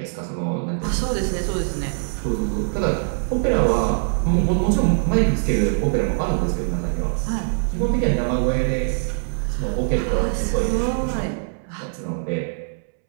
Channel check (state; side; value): silent; left; 64 dB below the other